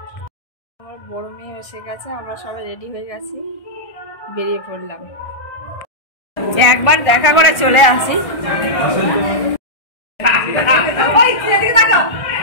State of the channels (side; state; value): right; late; 1.6 ms